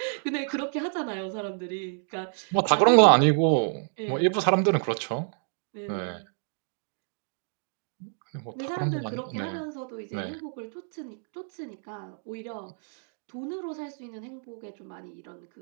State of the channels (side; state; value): left; silent; 59 dB below the other